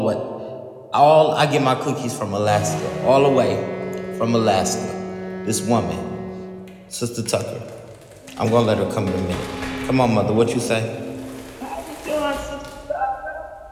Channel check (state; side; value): identical; both; correlation 1.00